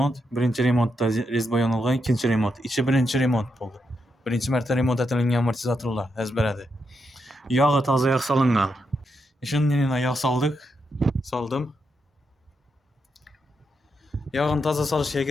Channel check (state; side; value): normal; both; correlation 0.83